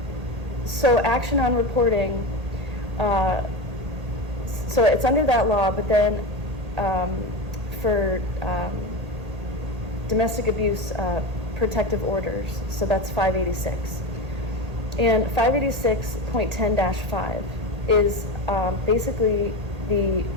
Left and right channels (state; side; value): late; left; 1.8 ms